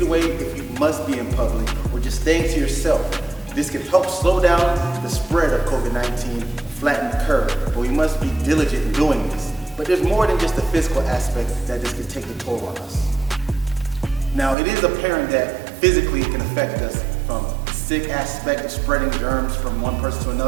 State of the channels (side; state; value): left; drops out; at 14.6 s